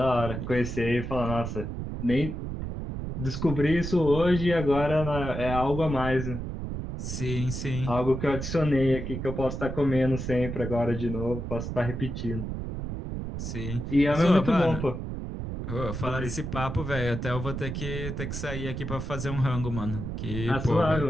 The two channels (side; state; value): right; noise; rumble, 5 dB below the sound